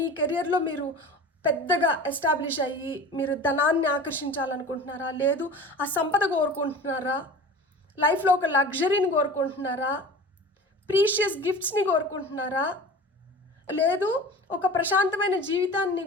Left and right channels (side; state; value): both; normal; correlation 0.37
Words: కెరియర్లో మీరు పెద్దగా ఎస్టాబ్లిష్ అయ్యి మీరు ధనాన్ని ఆకర్షించాలనుకుంటున్నారా? లేదు ఆ సంపద కోరుకుంటున్నారా? లైఫ్లో ఒక లగ్జరీని కోరుకుంటున్నారా? ప్రీషియస్ గిఫ్ట్స్ని కోరుకుంటున్నారా? లేదు ఒక ప్రశాంతమైన జీవితాన్ని